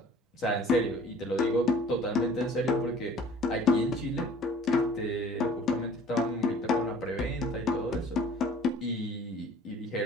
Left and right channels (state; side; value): normal; both; correlation 0.50